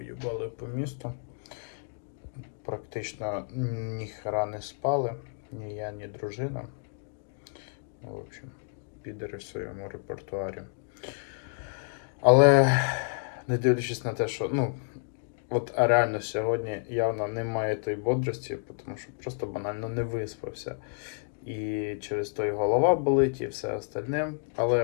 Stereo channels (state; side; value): silent; right; 58 dB below the other